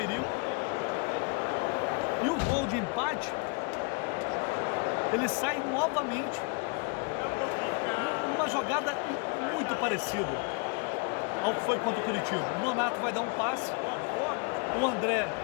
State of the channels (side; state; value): right; quieter; 32.8 dB